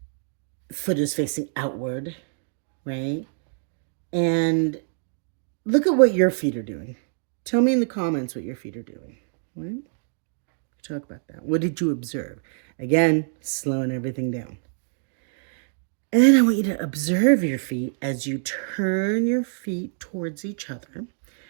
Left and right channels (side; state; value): left; silent; digital silence